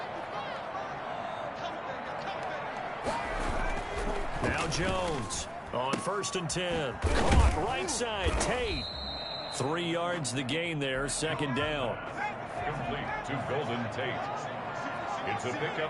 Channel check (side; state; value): both; identical; correlation 1.00